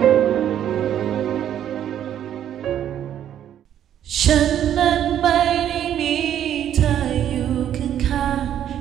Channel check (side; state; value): left; quieter; 10.5 dB